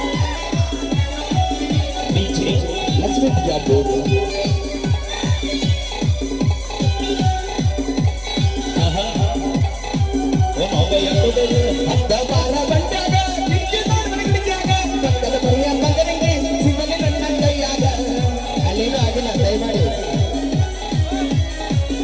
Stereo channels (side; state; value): both; identical; correlation 1.00